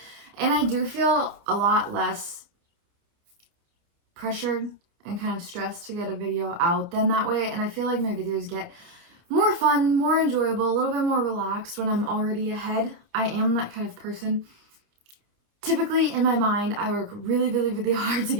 And I do feel a lot less pressured and kind of stressed to get a video out than that way. And I feel like my videos get more fun, more enjoyable, a little bit more relaxed when I'm already ahead. I am that kind of person. Typically, in my mind, I work really, really, really hard to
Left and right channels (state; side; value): late; left; 29 ms